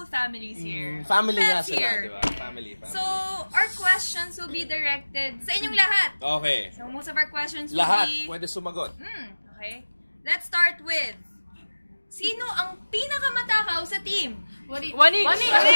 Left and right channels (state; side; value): inverted; both; correlation -1.00